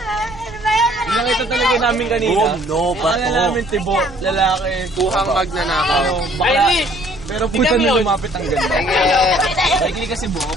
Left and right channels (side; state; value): right; noise; rumble, 19 dB below the sound